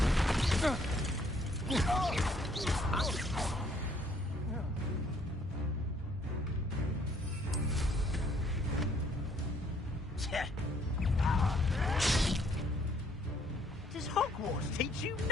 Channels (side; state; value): both; normal; correlation 0.65